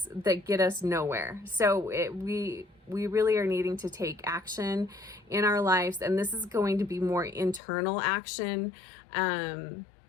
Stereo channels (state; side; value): drops out; right; at 7.6 s